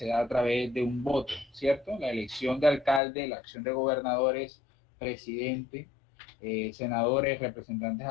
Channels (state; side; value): drops out; right; at 3.0 s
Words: da a través de un voto, ¿cierto? La elección de alcalde, la acción de gobernadores, presidente, senadores, representantes